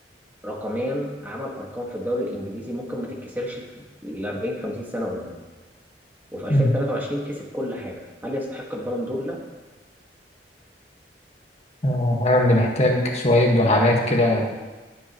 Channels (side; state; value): both; normal; correlation 0.60